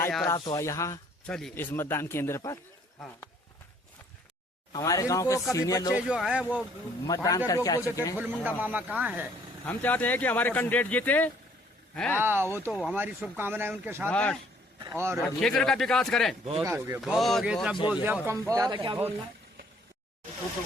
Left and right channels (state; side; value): normal; both; correlation 0.61